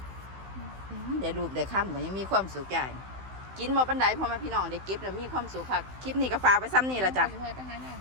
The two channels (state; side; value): late; left; 16 ms